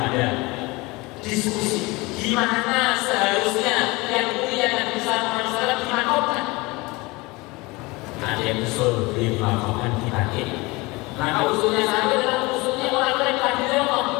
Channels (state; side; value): quieter; right; 23.7 dB